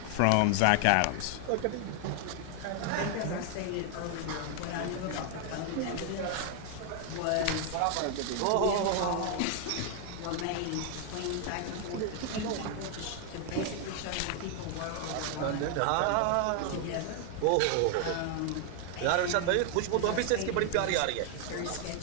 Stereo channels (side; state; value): both; different; correlation 0.00